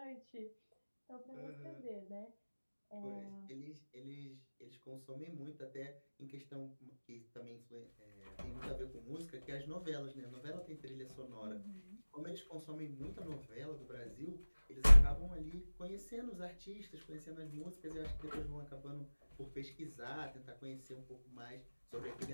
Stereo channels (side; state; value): both; inverted; correlation -1.00